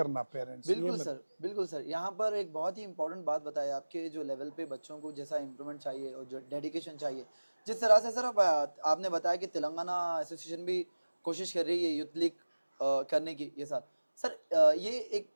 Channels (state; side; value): inverted; both; correlation -1.00